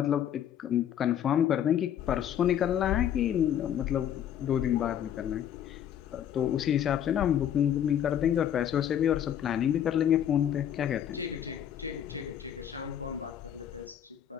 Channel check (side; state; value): right; quieter; 9.9 dB